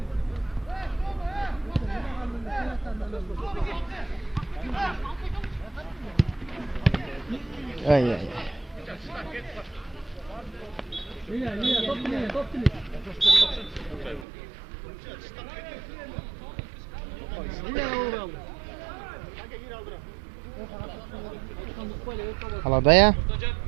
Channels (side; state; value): left; drops out; at 14.2 s